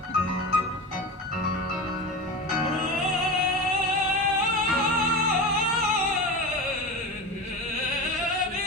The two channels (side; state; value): both; normal; correlation 0.27